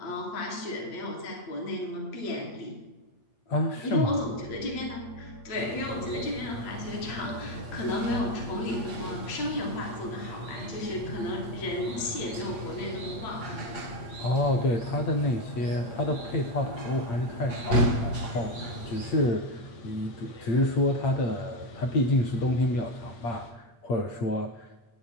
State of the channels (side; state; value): right; late; 8.6 ms